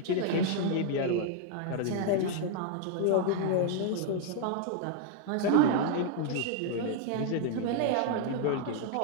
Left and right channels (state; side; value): different; both; correlation 0.00